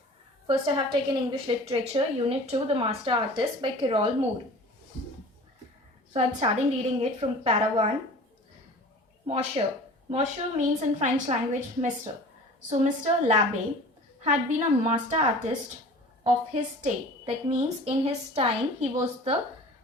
First I have taken English Literature, Unit 2, The Master Artist by Carol Moore. So I'm starting reading it from para 1. Monsieur. Monsieur means in French language Mr. So Mr. L'Abbé had been a master artist of his day. That means in his time he was the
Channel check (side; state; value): both; normal; correlation 0.42